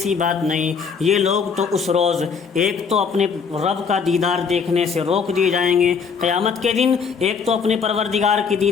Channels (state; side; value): quieter; right; 5.9 dB